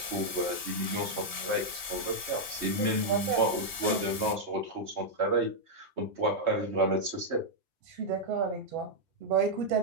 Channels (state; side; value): late; left; 2.7 ms